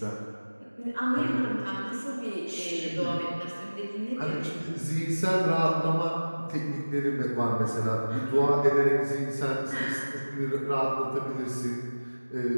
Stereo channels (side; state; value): both; inverted; correlation -1.00